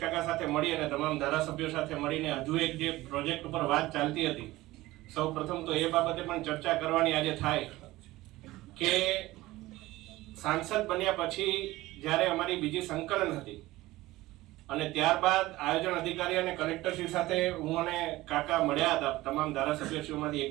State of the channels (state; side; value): quieter; left; 18.1 dB